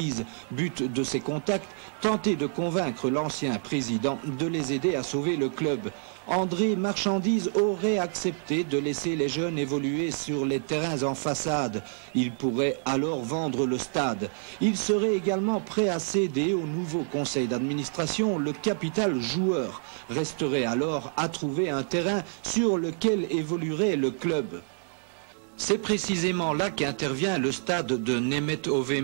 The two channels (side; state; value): left; silent; 60 dB below the other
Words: But de ces contacts, tenter de convaincre l'ancien président de les aider à sauver le club. André Marchandise aurait accepté de laisser les jeunes évoluer sur les terrains en façade. Il pourrait alors vendre le stade. Il serait également prêt à céder au nouveau conseil d'administration le capital joueur. Resterait alors à trouver un terrain sur lequel évoluerait le club. C'est précisément là qu'intervient le stade de